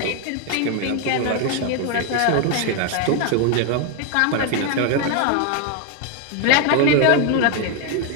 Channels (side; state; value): both; different; correlation 0.01